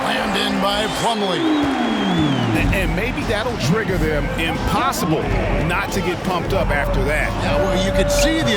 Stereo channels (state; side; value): identical; both; correlation 1.00